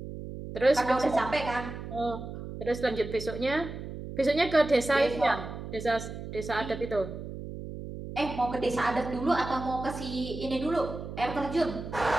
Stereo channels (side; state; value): right; noise; hum, 9 dB below the sound